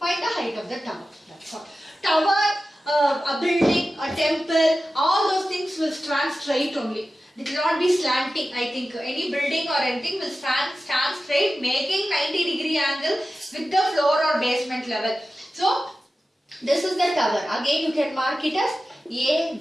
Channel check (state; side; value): normal; both; correlation 0.94